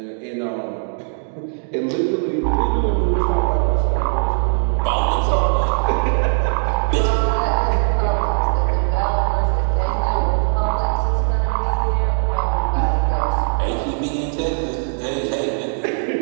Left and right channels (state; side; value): silent; left; digital silence